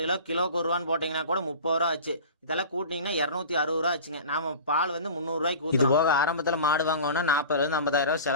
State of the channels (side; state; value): both; inverted; correlation -0.37